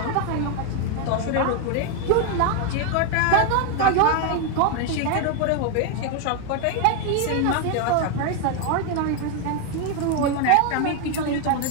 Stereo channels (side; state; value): both; different; correlation 0.01